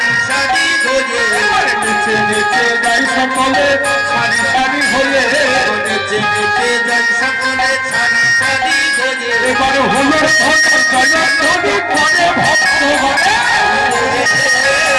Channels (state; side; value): identical; both; correlation 1.00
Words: সারি হয়ে নেচে নেচে যাই সকলে সারি সারি হয়ে নেচে নেচে যাই সকলে সারি সারি হয়ে এবার হলো জয়ধ্বনি পরে ভক্ত হবে